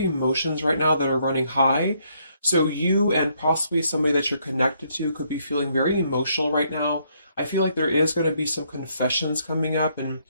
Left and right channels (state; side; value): inverted; both; correlation -0.71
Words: right now that are running high. So you and possibly somebody that you're connected to could be feeling very emotional right now. I feel like there is going to be some confessions coming up, and